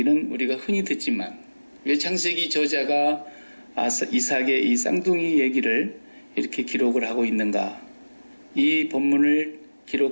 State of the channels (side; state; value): both; inverted; correlation -1.00